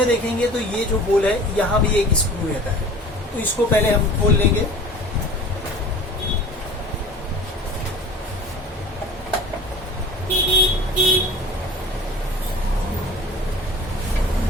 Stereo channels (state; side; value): normal; both; correlation 0.43